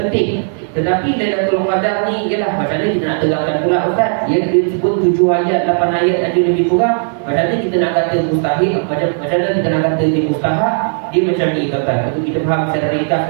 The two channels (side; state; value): left; silent; 70 dB below the other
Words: Tetapi Lailatul Qadar ni ialah macam mana kita nak terangkan pula Ustaz? Dia sebut 7 ayat, 8 ayat aja lebih kurang. Macam mana kita nak kata mustahil? Macam mana kita nak kata dia mustahak? Dia macam ni tuan-tuan. Itu kita faham secara ringkas